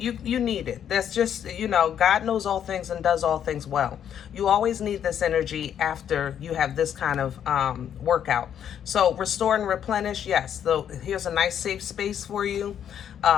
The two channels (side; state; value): right; quieter; 9.2 dB